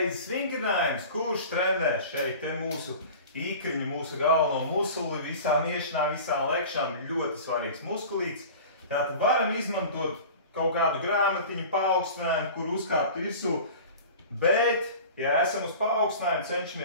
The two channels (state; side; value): inverted; both; correlation -0.38